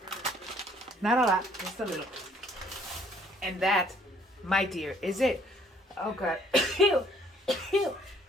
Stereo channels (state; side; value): normal; both; correlation 0.61